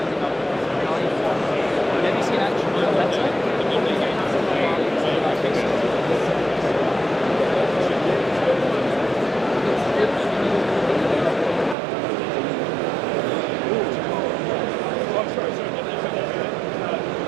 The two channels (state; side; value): drops out; left; at 11.8 s